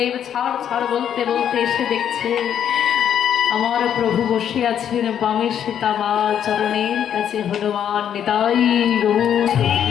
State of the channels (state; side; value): quieter; right; 9.3 dB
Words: ছাড় ছাড় বলতে বলতে এসে দেখছে আমার প্রভু বসে আছেন বামে সীতামা, চরণের কাছে হনুমান। নিতাই গৌর